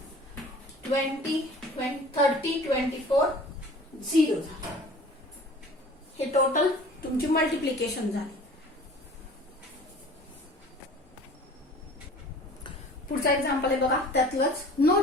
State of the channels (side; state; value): both; normal; correlation 0.46